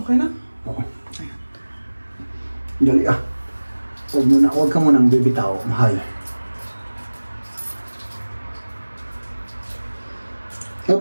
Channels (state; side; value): inverted; both; correlation -1.00